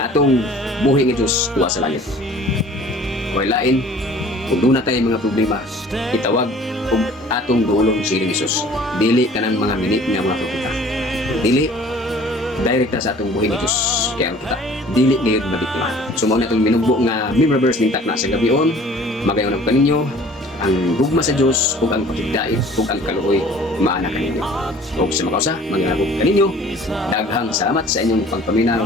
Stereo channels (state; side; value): normal; both; correlation 0.50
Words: atong buhi nga Diyos tuwa sa langit. Kay lain kung doon na tayo mga problema itawag kung atong duolong si Jesus dili kanang mga mini nga mga propeta dili direkta sa atong buhi ni Diyos kaya kita dili ngayon mabiktima. So mao na itong minugbo nga member verse ning takna sa gabion magayon ang kaninyo ang gugma sa Diyos ug ang pakigdait ug ang kaluoy maana kaninyo ug sa makausa mangyabog kaninyo daghang salamat sa inyong pagpaminaw